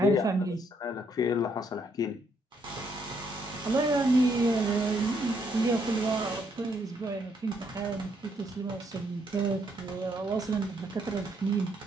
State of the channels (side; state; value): both; normal; correlation 0.72